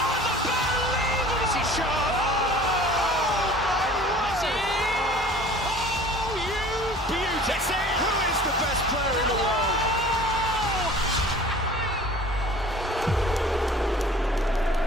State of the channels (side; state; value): both; normal; correlation 0.47